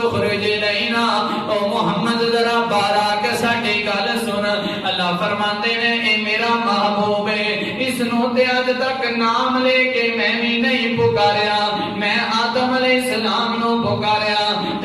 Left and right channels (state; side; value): identical; both; correlation 1.00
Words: اخرج لینا او محمد ذرا باہر آ کے ساڈی گل سن اللہ فرماندے نے اے میرا محبوب ہے اس نو تے اج تک نام لے کے میں بھی نہیں پکاریا میں آدم علیہ السلام نو پکاریا